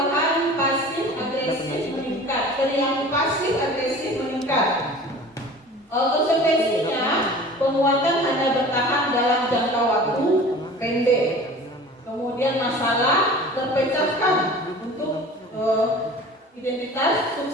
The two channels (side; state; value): both; normal; correlation 0.41